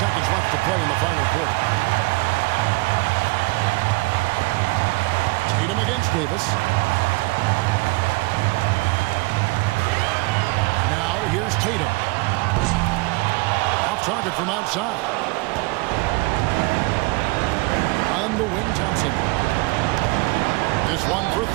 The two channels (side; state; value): left; quieter; 25.1 dB